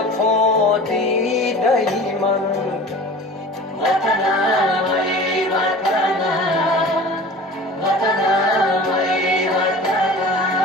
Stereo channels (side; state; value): both; normal; correlation 0.40